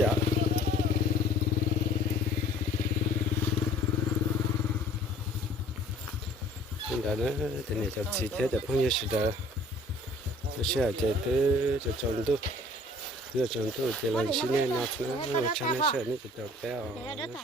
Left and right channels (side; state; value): both; normal; correlation 0.51